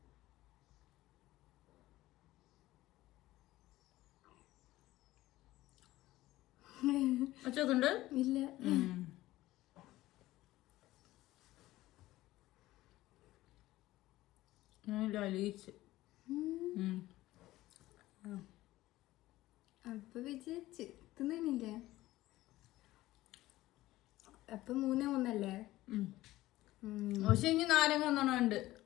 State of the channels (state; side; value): quieter; right; 16.6 dB